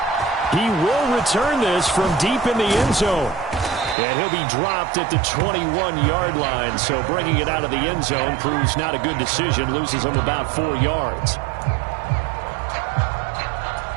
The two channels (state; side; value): drops out; left; at 4.0 s